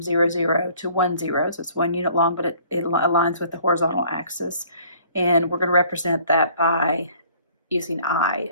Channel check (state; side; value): inverted; both; correlation -0.56